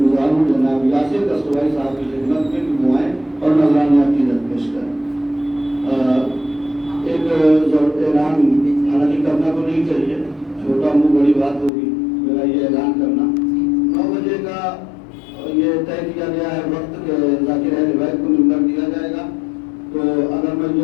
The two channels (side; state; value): right; drops out; at 11.7 s